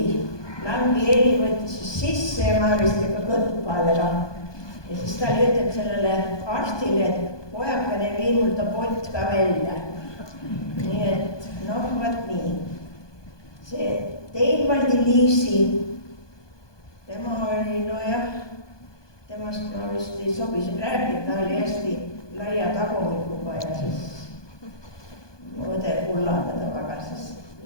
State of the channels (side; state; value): right; late; 1.2 ms